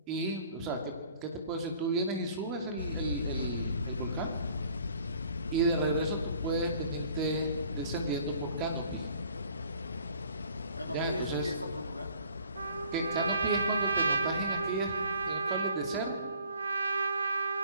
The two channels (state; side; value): inverted; both; correlation -0.55